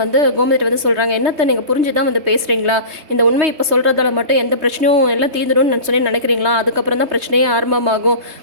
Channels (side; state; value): left; late; 3.2 ms